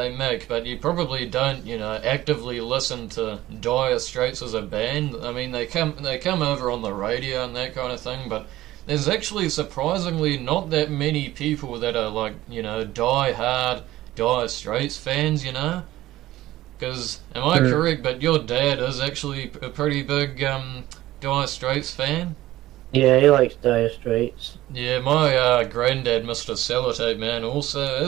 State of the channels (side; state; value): left; quieter; 15.8 dB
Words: make, but you probably don't, actively listen to Dire Straits as a band. I mean, they come over on the radio and that kind of thing, but there's actually surprisingly not that many people that are like, die-hard Dire Straits fans. Because, am I correct, but your dad is actually a pretty big Dire Straits fan? Yeah, he likes Dire Straits. Yeah, my granddad, Mr. Sellotape Man, also